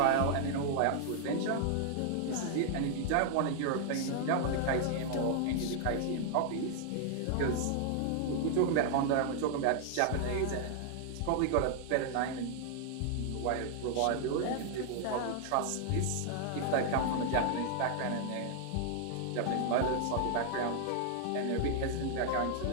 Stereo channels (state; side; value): different; both; correlation 0.00